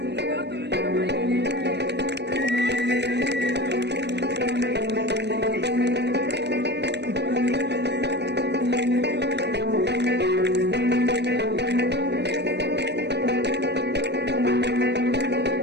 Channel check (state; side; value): late; left; 0.50 ms